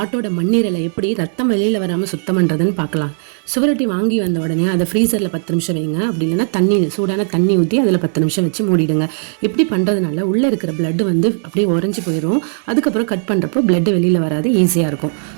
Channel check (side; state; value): left; silent; digital silence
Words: மண்ணீரலை எப்படி ரத்தம் வெளியில் வராமல் சுத்தம் பண்ணுறதுன்னு பார்க்கலாம். சுவரொட்டி வாங்கி வந்த உடனே அதை ஃப்ரீசரில் 10 நிமிஷம் வைங்க. அப்படி இல்லைன்னா சூடான தண்ணி ஊற்றி அதில் 10 நிமிஷம் வச்சு மூடிடுங்க. இப்படி பண்ணுறதுனால உள்ளே இருக்கிற பிளட் அப்படியே உறைஞ்சி போயிடும். அதுக்கப்புறம் கட் பண்ணுறப்போ பிளட் வெளியில் வராது, ஈஸியாக இருக்கும்.